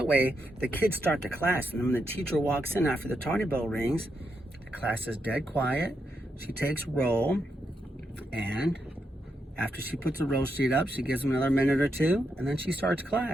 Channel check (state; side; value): normal; both; correlation 0.82